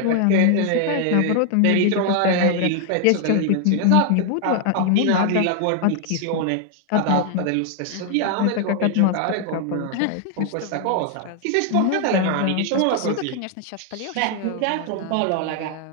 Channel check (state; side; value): different; both; correlation 0.00